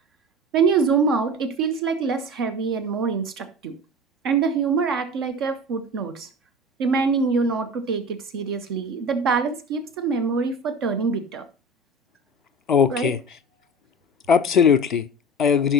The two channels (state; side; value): normal; both; correlation 0.34